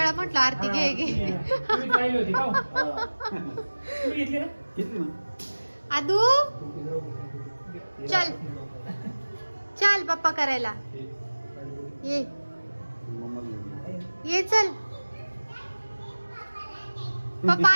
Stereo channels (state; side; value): inverted; both; correlation -1.00